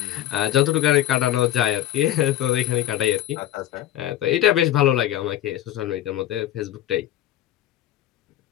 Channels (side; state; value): right; quieter; 12.9 dB